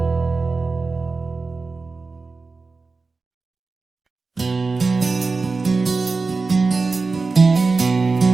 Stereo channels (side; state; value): left; quieter; 4.0 dB